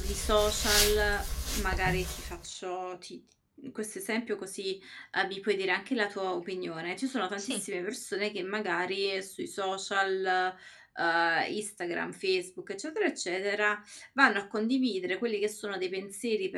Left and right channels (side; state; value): both; identical; correlation 1.00